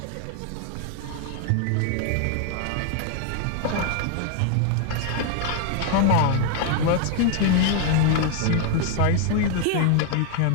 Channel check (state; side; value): different; both; correlation 0.00